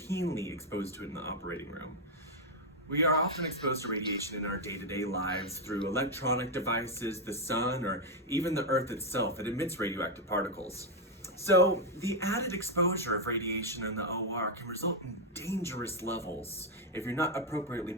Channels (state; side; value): normal; both; correlation 0.03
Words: exposed to it in the operating room. We are often exposed to radiation in our day-to-day lives through electronic devices, the sun, or even the earth itself. It emits radioactive particles. So the added exposure of radiation in the OR can result in dangerous levels if you're not appropriately